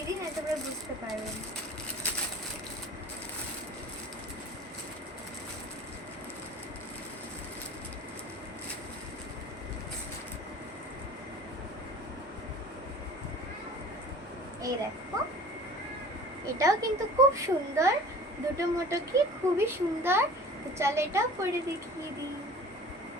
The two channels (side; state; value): both; normal; correlation 0.43